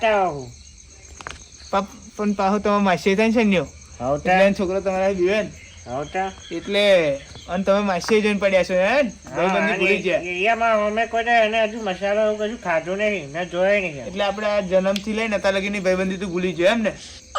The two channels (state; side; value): identical; both; correlation 1.00